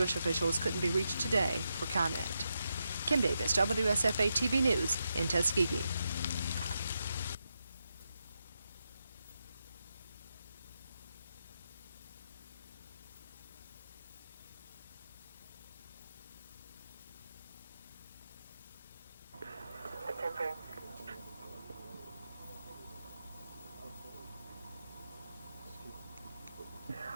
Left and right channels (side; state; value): both; inverted; correlation -0.85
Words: officials couldn't be reached today for comment. Kim Davis, WSFA TV News in Tuskegee.